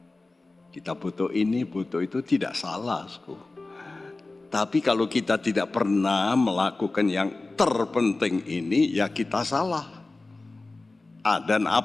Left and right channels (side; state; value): right; quieter; 3.3 dB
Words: Kita butuh ini, butuh itu, tidak salah. Tapi kalau kita tidak pernah melakukan yang terpenting ini, ya kita salah. Dan